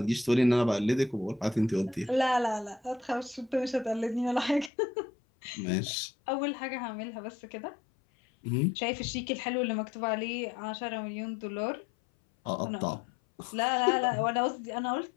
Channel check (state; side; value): drops out; right; at 4.7 s